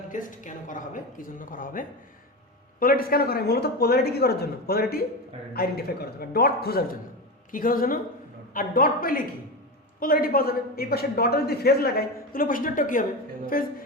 test কেন করা হবে, কি জন্য করা হবে? পোলারিটি টেস্ট কেন করা হয়? মূলত পোলারিটি কি করার জন্য? পোলারিটি আইডেন্টিফাই করার জন্য, ডট খোঁজার জন্য। কি খোঁজার জন্য? আর ডট পেলে কি পোলারিটি পাওয়া যাবে। এই পাশে ডটে যদি ফেজ লাগাই তাহলে পাশে ডটটা কি হবে? ফেজ।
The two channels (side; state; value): both; normal; correlation 0.20